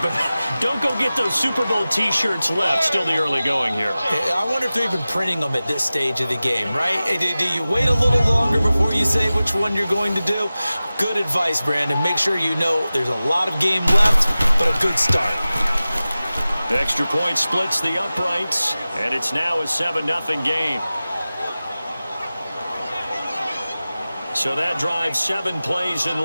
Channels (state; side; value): inverted; both; correlation -0.96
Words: but don't go get those Super Bowl T-shirts left. Still the early going here. I wonder if they're even printing them at this stage of the game, right? Do you wait a little longer before you say which one you're going to do? Good advice, Brandon. Make sure you know there's a lot of game left, but a good start. Extra point splits the uprights, and it's now a 7-0 game. So that drives 7 plays in